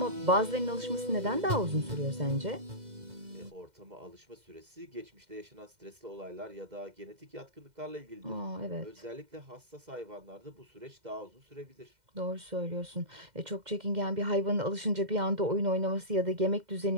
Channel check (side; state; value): left; late; 2.1 ms